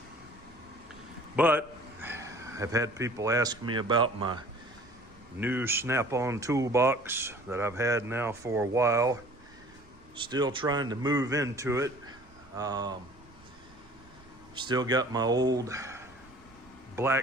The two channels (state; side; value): noise; right; rumble, 25 dB below the sound